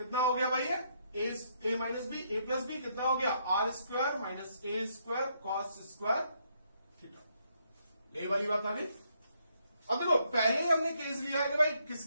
हो गया भाई ये ए माइनस बी, ए प्लस बी कितना हो गया R स्क्वायर माइनस ए स्क्वायर कॉस स्क्वायर थीटा। यही वाली बात आ गई। अब देखो पहले हमने केस लिया है कि भाई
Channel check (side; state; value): both; inverted; correlation -0.73